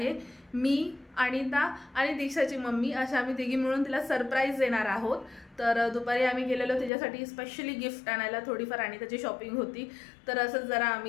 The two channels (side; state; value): right; drops out; at 6.9 s